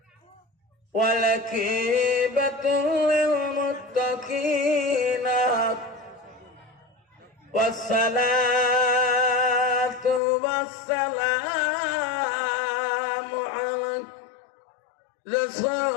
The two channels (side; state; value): right; drops out; at 10.2 s